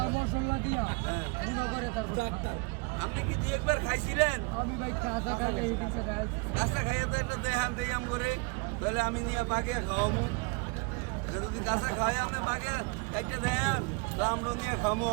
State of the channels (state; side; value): quieter; left; 28.4 dB